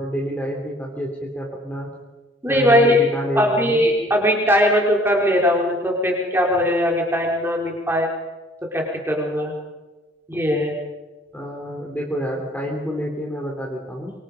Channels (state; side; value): normal; both; correlation 0.56